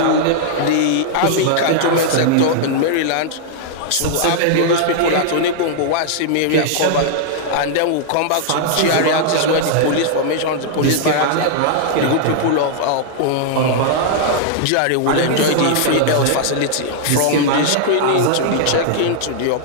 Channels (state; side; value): different; both; correlation -0.01